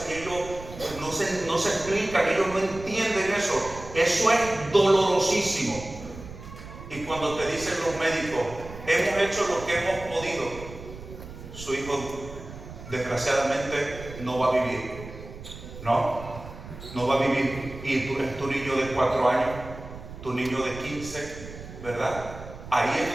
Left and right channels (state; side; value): noise; right; rumble, 14 dB below the sound